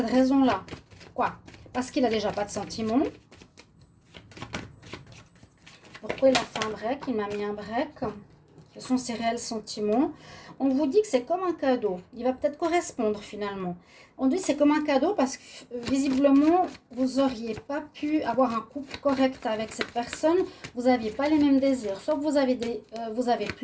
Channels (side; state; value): both; identical; correlation 1.00